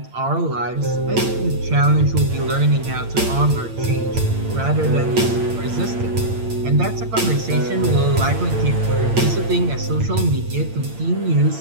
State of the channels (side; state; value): left; late; 8.8 ms